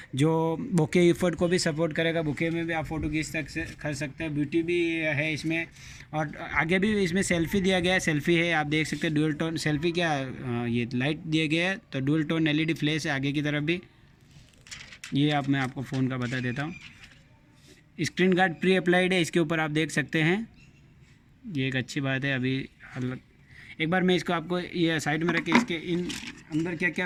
जो बोके इफर्ट को भी सपोर्ट करेगा। बोके में भी आप फ़ोटो खींच सकते हैं, ब्यूटी भी है इसमें। और आगे भी इसमें सेल्फी दिया गया है, सेल्फी है, आप देख सकते हैं। डुअल टोन सेल्फी क्या, ये लाइट दिया गया है, तो डुअल टोन LED फ्लैश है आगे की तरफ भी। ये मैं आपको फ़ोन का बता देता हूँ। स्क्रीन गार्ड प्री अप्लाइड है इसके ऊपर, आप देख सकते हैं। ये एक अच्छी बात है। अभी एक बार मैं इसको आपको ये साइड में रख के इसके इन अंदर क्या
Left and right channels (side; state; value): both; identical; correlation 1.00